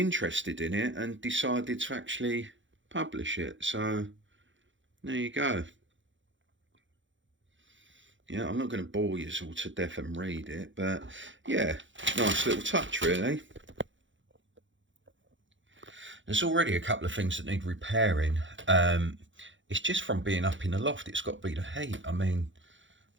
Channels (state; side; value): late; left; 0.55 ms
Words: in it and decided to actually publish it. So there you go. Yeah, I'm not going to bore you all to death and read it, but yeah, nice little touch really. There's already a couple of things that need repairing. It's just from being up in the loft. It's got to be the heat. I mean,